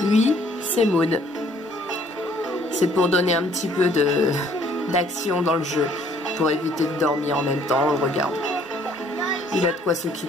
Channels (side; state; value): both; normal; correlation 0.61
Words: c'est Maud. C'est pour donner un petit peu d'action dans le jeu, pour éviter de dormir en même temps, on le regarde. Il a de quoi